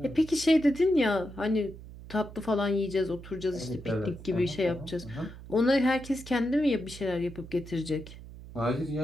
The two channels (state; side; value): noise; right; hum, 15 dB below the sound